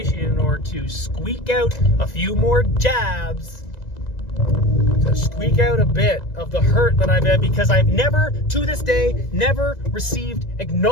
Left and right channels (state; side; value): late; right; 1.9 ms